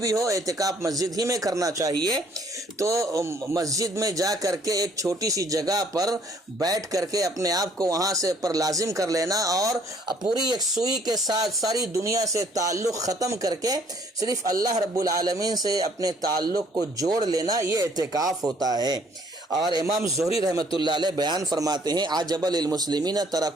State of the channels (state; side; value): normal; both; correlation 0.62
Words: ہو، اعتکاف مسجد ہی میں کرنا چاہیے۔ تو مسجد میں جا کر کے ایک چھوٹی سی جگہ پر بیٹھ کر کے اپنے آپ کو وہاں سے پر لازم کر لینا، اور پوری ایک سوئی کے ساتھ ساری دنیا سے تعلق ختم کر کے صرف اللہ رب العالمین سے اپنے تعلق کو جوڑ لینا، یہ اعتکاف ہوتا ہے۔ اور امام زہری رحمۃ اللہ علیہ بیان فرماتے ہیں عجب للمسلمین